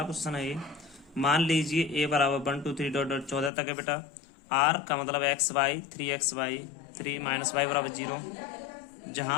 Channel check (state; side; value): drops out; right; at 3.5 s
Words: क्वेश्चन है ये। मान लीजिए a बराबर 1 2 3 डॉट डॉट 14 तक है बेटा। r का मतलब एक्स वाई 3 3 माइनस वाई बराबर 0।